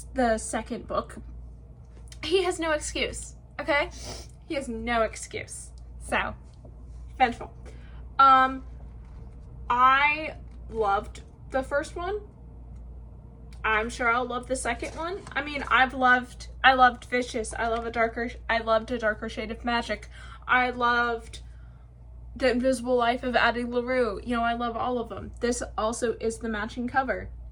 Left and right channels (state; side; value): identical; both; correlation 1.00